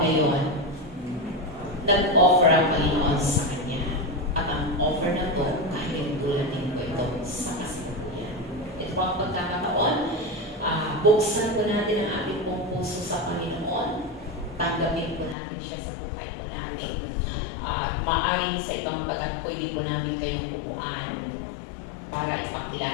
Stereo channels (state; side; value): drops out; right; at 15.4 s